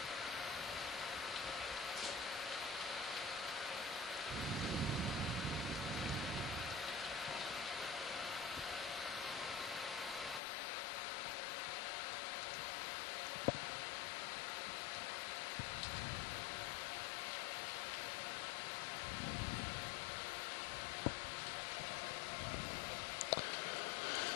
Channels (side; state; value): right; drops out; at 10.4 s